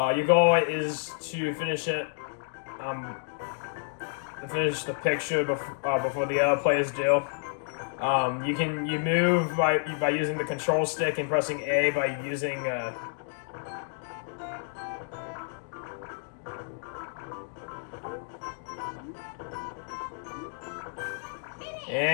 goal is to finish it, finish the picture before the other players do. You move by using the control stick and pressing A by using.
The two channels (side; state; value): right; silent; 58 dB below the other